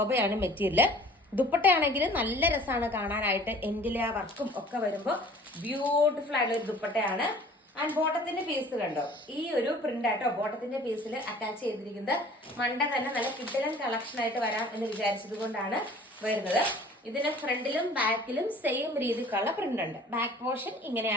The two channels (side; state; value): both; normal; correlation 0.49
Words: മെറ്റീരിയൽ. ദുപ്പട്ടയാണെങ്കിൽ നല്ല രസമാണ് കാണാനായിട്ട്. എൻഡിലെ ആ വർക്കും ഒക്കെ വരുമ്പോൾ ബ്യൂട്ടിഫുൾ ആയിട്ടുള്ള ഒരു ദുപ്പട്ടയാണ്. ആൻഡ് ബോട്ടത്തിന്റെ പീസ് കണ്ടോ, ഈ ഒരു പ്രിന്റ് ആട്ടോ ബോട്ടത്തിന്റെ പീസിൽ അറ്റാച്ച് ചെയ്തിരിക്കുന്നത്. മണ്ട തന്നെ നല്ല കിഡിലൻ കളക്ഷൻ ആയിട്ട് വരാം എന്ന് വിചാരിച്ചത് കൊണ്ടാണ് വരുന്നത്. ഇതിന്റെ ഫ്രണ്ടിലും ബാക്കിലും സെയിം രീതിക്കുള്ള പ്രിന്റ് ഉണ്ട്. ബാക്ക് പോർഷൻ